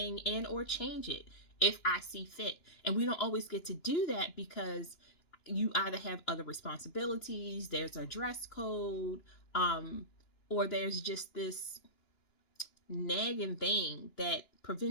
and or change it if I see fit. And we don't always get to do that because you either have other responsibilities, there's a dress code, or there's just this nagging thing that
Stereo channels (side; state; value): right; late; 2.9 ms